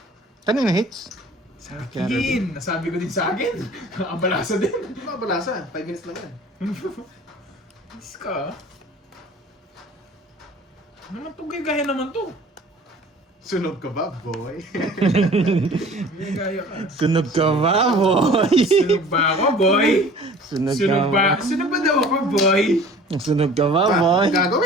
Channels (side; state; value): both; normal; correlation 0.47